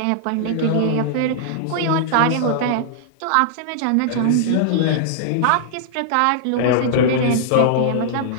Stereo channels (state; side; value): different; both; correlation -0.01